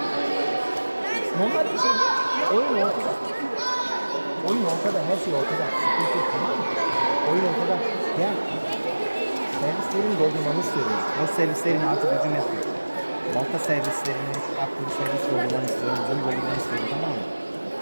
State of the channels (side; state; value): both; inverted; correlation -1.00